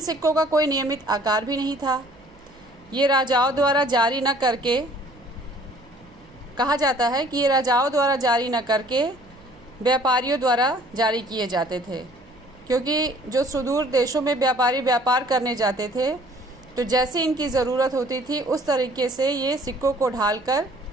का कोई नियमित आकार भी नहीं था। ये राजाओं द्वारा जारी न करके कहा जाता है कि ये राजाओं द्वारा जारी न करके व्यापारियों द्वारा जारी किए जाते थे, क्योंकि जो सुदूर देशों में व्यापारी व्यापार करने जाते थे तो जैसे इनकी ज़रूरत होती थी उस तरीके से ये सिक्कों को ढालकर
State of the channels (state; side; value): noise; right; hum, 27 dB below the sound